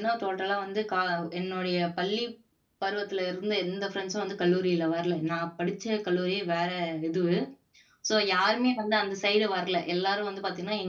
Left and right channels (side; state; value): both; identical; correlation 1.00